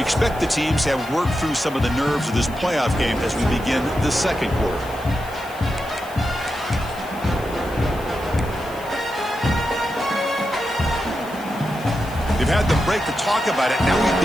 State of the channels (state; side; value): noise; left; hiss, 20 dB below the sound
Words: expect the teams to have worked through some of the nerves of this playoff game as we begin the 2nd quarter. They've had the break to talk about it. Now we